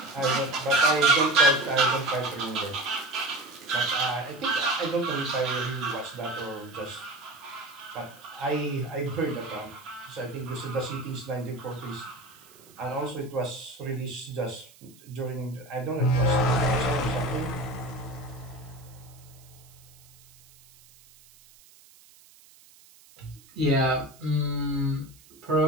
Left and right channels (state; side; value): noise; right; hiss, 25 dB below the sound